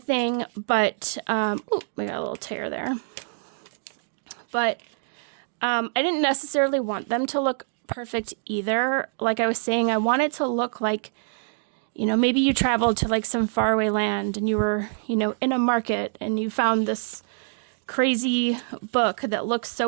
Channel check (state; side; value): silent; left; digital silence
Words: thing, but ooh, we got a little tear there. But I didn't necessarily want them to look perfect either. Like I was saying, I want it to look like, you know, maybe you traveled to like some faraway land and you were, you know, in a market and you found this crazy book that looks so